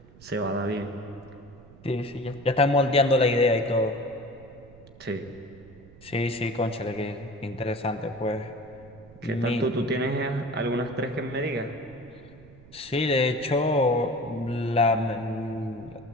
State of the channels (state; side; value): noise; right; rumble, 22 dB below the sound